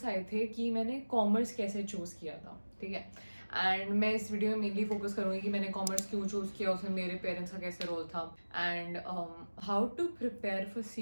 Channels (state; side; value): inverted; both; correlation -1.00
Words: आए थे कि मैंने कॉमर्स कैसे चूज़ किया था, ठीक है. एंड मैं इस वीडियो में मेनली फोकस करूँगी कि मैंने कॉमर्स क्यों चूज़ किया, उसमें मेरे पेरेंट्स का कैसे रोल था and how to prepare for